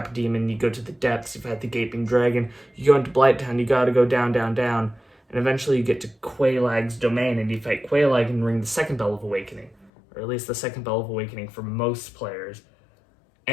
Demon, you go to the depths, you've had the Gaping Dragon, you go into Blighttown, you gotta go down, down, down, and eventually you get to Quelaag's domain, and you fight Quelaag and ring the second Bell of Awakening, or at least the second Bell of Awakening for most players.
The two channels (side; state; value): right; drops out; at 9.9 s